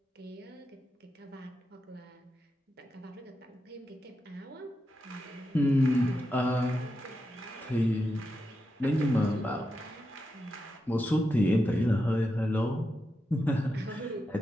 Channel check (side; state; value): both; normal; correlation 0.87